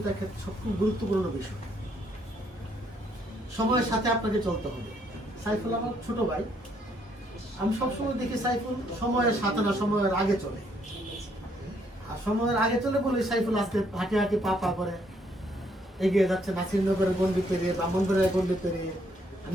ক্ষেত্রে সবচেয়ে গুরুত্বপূর্ণ বিষয়। সময়ের সাথে আপনাকে চলতে হবে। সাইফুল আমার ছোট ভাই, আমি সবসময় দেখি সাইফুল সময়ের সাথে না সময়ের আগে চলে। আর সময়ের আগে চলে বলে সাইফুল আজকে হাঁটি হাঁটি পা পা করে এগিয়ে যাচ্ছে নাসিরনগরের গন্ডি পেরিয়ে, ব্রাহ্মণবাড়িয়ার গন্ডি পেরিয়ে।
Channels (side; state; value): both; normal; correlation 0.70